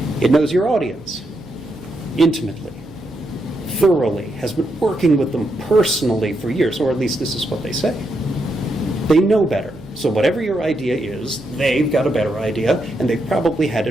It knows your audience intimately, thoroughly, has been working with them personally for years, or at least this is what they say. They know better. So whatever your idea is, they've got a better idea, and they've probably had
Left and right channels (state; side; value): noise; right; hum, 23 dB below the sound